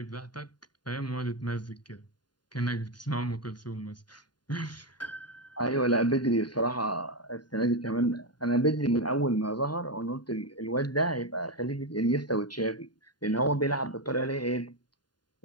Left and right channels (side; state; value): right; late; 0.70 ms